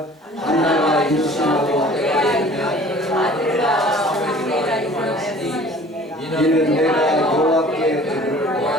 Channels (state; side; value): normal; both; correlation 0.48